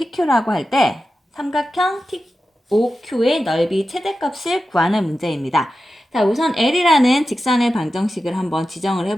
할 때 삼각형 POQ의 넓이 최대값을 구하는 문제입니다. 자, 우선 L이라는 직선의 방정식을 한번 지정을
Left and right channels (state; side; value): normal; both; correlation 0.92